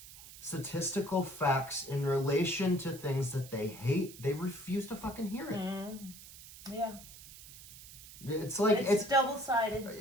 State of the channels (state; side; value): noise; right; hiss, 17 dB below the sound